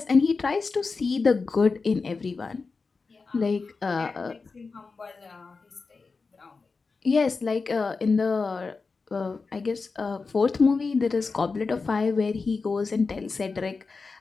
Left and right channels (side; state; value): right; quieter; 4.4 dB